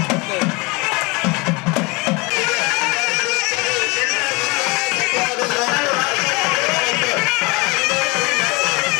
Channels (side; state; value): right; quieter; 26.6 dB